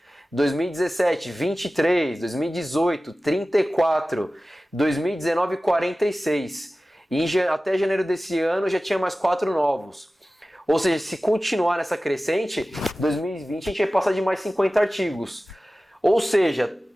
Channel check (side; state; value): both; normal; correlation 0.96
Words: 2017, 23. 2018, 34. 2019, 46. E até janeiro desse ano já tinha mais 4 novos. Ou seja, se continuar nessa crescente, 2020 a gente vai passar de mais 50 artigos. Ou seja,